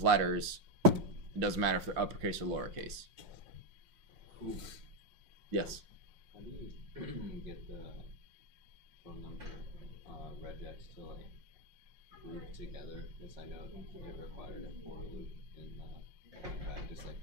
letters, it doesn't matter if they're uppercase or lowercase. Cool. Yes. How do you get the phone number regex to like group together? Because I know it required a for loop in practice. Like,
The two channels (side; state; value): left; late; 5.6 ms